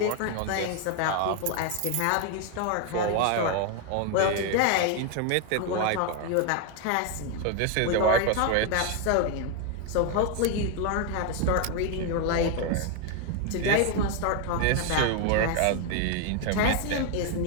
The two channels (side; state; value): both; different; correlation 0.01